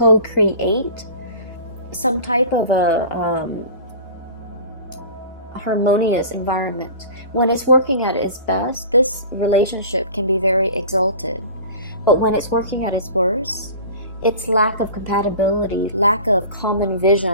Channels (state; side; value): inverted; both; correlation -0.39